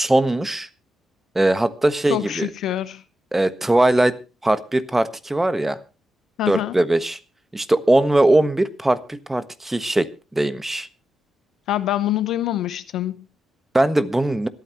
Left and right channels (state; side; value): normal; both; correlation 0.90